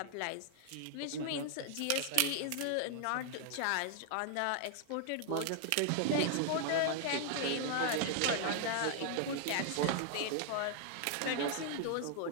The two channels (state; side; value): different; both; correlation 0.00